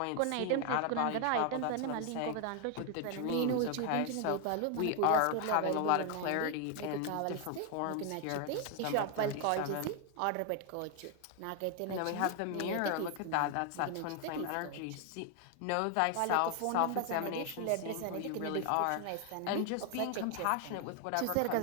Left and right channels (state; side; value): different; both; correlation 0.01